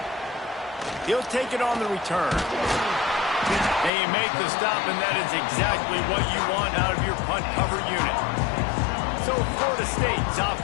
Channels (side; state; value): right; drops out; at 3.9 s